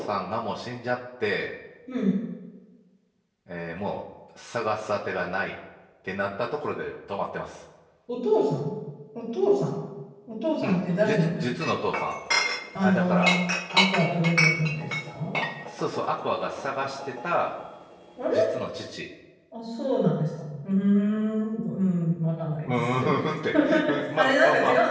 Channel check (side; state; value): both; identical; correlation 1.00